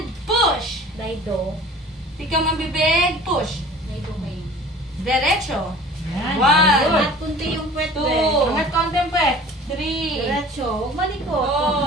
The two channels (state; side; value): normal; both; correlation 0.45